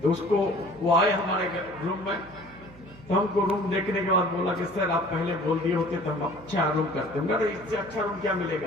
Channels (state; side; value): noise; right; hum, 22 dB below the sound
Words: तो उसको वो आए हमारे रूम में, तो हमको रूम देखने के बाद बोला कि सर आप पहले बोल दिए होते तो हम अच्छा रूम करते। मगर इससे अच्छा रूम क्या